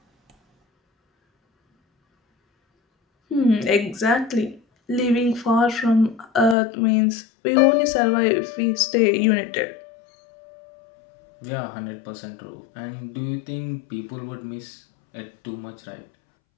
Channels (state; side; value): drops out; right; at 6.6 s